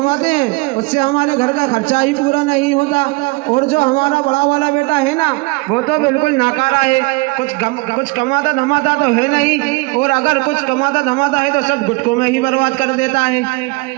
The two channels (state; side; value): quieter; left; 26.7 dB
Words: हैं उससे हमारे घर का खर्चा ही पूरा नहीं होता। और जो हमारा बड़ा वाला बेटा है ना, वो तो बिल्कुल नाकारा है। कुछ कमाता धमाता तो है नहीं, और अगर कुछ कमाता धमाता है तो सब गुटकों में ही बर्बाद कर देता है।